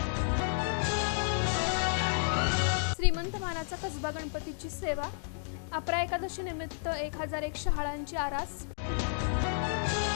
श्रीमंत मानाचा कसबा गणपतीची सेवा, अपरा एकादशी निमित्त 1001 शहाळांची आरास.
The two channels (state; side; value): silent; right; digital silence